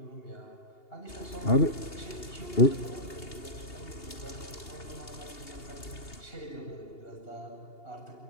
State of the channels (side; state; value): right; late; 2.8 ms